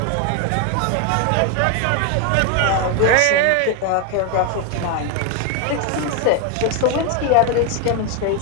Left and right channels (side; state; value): both; different; correlation 0.01